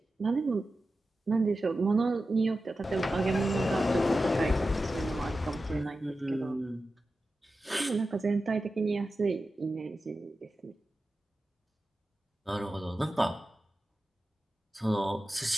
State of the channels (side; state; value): both; normal; correlation 0.93